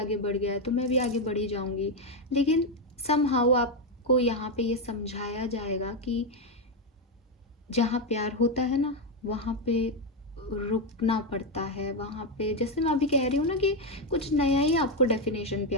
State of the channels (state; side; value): normal; both; correlation 0.05